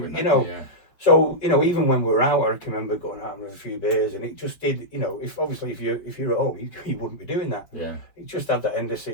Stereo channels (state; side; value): late; right; 5.6 ms